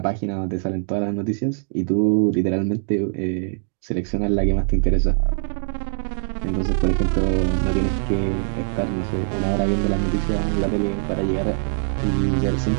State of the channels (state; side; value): silent; left; digital silence